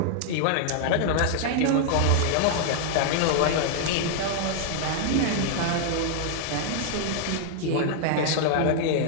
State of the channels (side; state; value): both; different; correlation -0.01